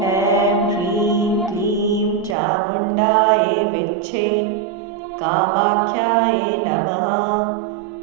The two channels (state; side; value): drops out; left; at 2.4 s